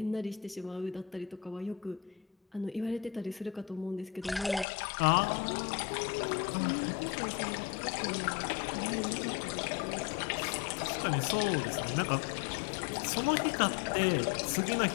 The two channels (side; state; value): right; drops out; at 4.7 s